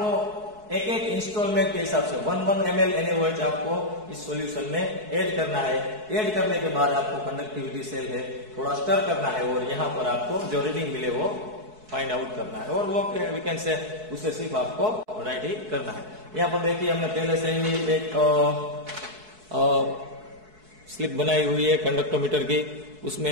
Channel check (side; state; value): left; late; 4.7 ms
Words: एक एक इंस्टॉलमेंट के हिसाब से 1 ml NaOH आपको इस सॉल्यूशन में ऐड करना है। ऐड करने के बाद आपको कंडक्टिविटी सेल है थोड़ा स्टर करना है, और यहाँ पर आपको जो रीडिंग मिले वो फाइंड आउट करना है, और वो वी कैन से उसे सिर्फ आपको राइट ही करना है। यहाँ पर देखिए हमने पहले से ही एक स्लिप बनाई हुई है कंडक्टोमीटर की,